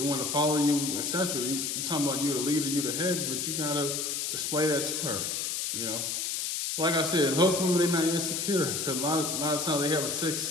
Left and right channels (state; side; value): noise; left; hiss, 1 dB below the sound